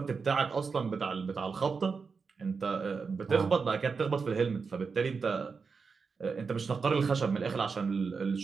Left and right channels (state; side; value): quieter; left; 5.1 dB